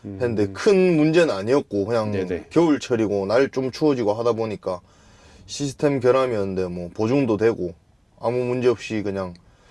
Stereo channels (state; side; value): identical; both; correlation 1.00